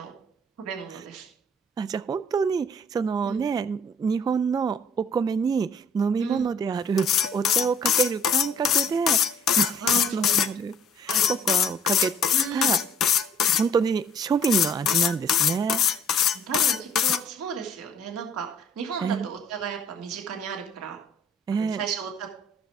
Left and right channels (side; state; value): both; normal; correlation 0.55